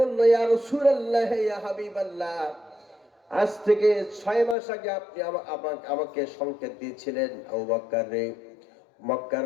ইয়া রাসূলুল্লাহ, ইয়া হাবিবাল্লাহ, আজ থেকে 6 মাস আগে আপনি আমাকে সংকেত দিয়েছিলেন, আবু বকর রে,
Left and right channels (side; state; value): right; drops out; at 4.5 s